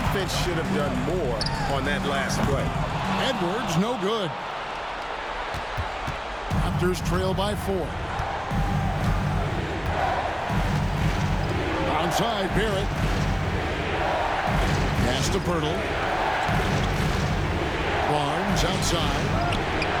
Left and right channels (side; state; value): both; identical; correlation 1.00